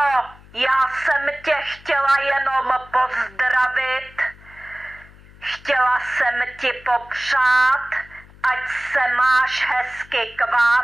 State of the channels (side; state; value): left; noise; hum, 23 dB below the sound